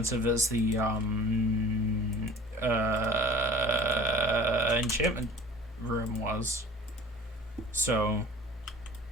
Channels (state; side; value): normal; both; correlation 0.43